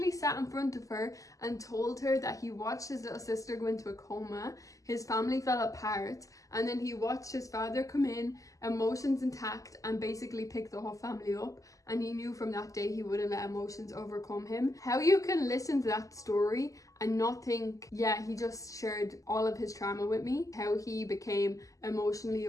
sat in front of her and told her that he watched his little sister go into a coma, his family fell apart, and then he watched his father come in, emotions intact, and basically pick the whole family up. And he knew from that day he wouldn't let emotions overcome him. How you can listen to that story and not think, yeah, he just shared all of his trauma with me. How he became emotionally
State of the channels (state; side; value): late; right; 0.16 ms